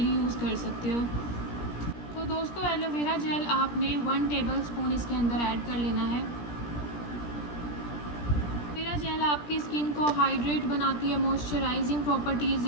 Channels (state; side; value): late; right; 17 ms